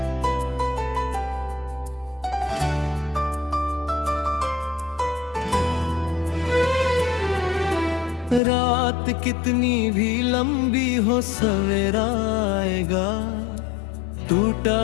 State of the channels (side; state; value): right; drops out; at 8.4 s